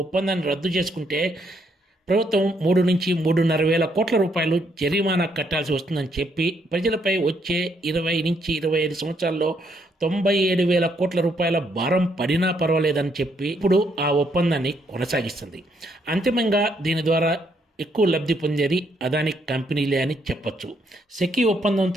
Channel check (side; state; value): both; normal; correlation 0.73